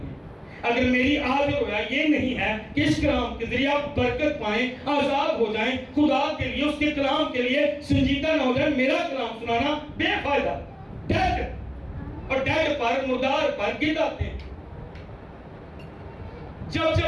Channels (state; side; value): identical; both; correlation 1.00